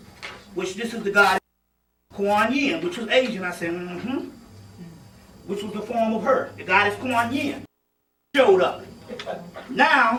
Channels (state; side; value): identical; both; correlation 1.00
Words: which this is the goddess Kuan Yin, which was Asian. I said, which was the form of her, the goddess Kuan Yin showed up.